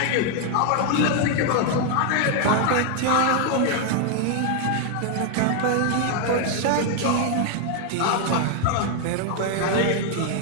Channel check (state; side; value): different; both; correlation 0.00